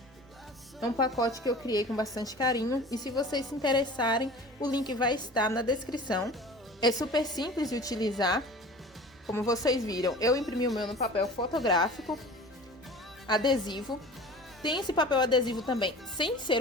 É um pacote que eu criei com bastante carinho. E se vocês se interessarem, o link vai estar na descrição. É super simples de utilizar. Como vocês viram, eu imprimi o meu no papel fotográfico, adesivo. Tem esse papel adesivo também, sem ser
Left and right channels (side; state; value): both; normal; correlation 0.40